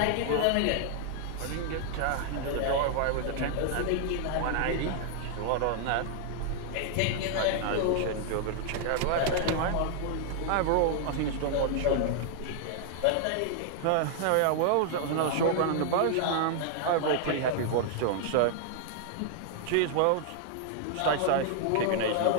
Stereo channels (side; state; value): both; different; correlation 0.00